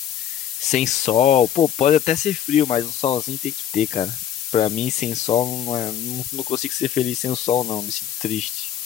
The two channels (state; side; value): quieter; right; 9.9 dB